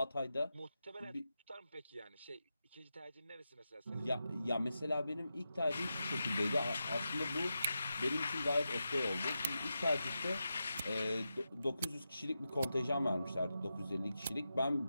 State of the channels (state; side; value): inverted; both; correlation -0.89